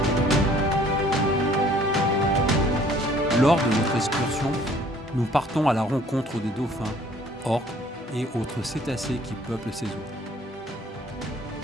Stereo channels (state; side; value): normal; both; correlation 0.57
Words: Lors de notre excursion, nous partons à la rencontre des dauphins, orques et autres cétacés qui peuplent ces eaux.